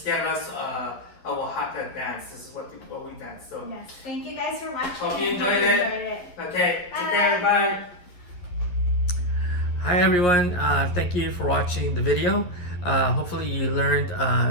of Oaxaca dance. This is what we dance. So yes, thank you guys for watching. Hope you enjoyed it. Okay, take care. Bye. Hi everyone. Thank you for watching the video. Hopefully you learned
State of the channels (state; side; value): late; right; 11 ms